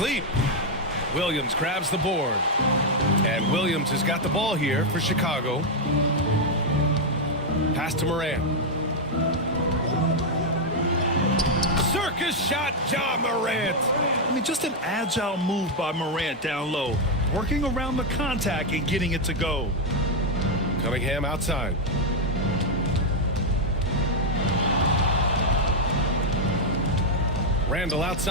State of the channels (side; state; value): both; normal; correlation 0.01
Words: Williams grabs the board. And Williams has got the ball here for Chicago. Pass to Morant. Circus shot, Ja Morant. I mean, just an agile move by Morant down low. Working around the contact and getting it to go. Cunningham outside. Randall